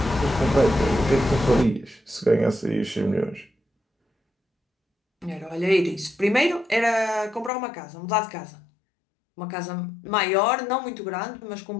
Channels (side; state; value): right; drops out; at 7.5 s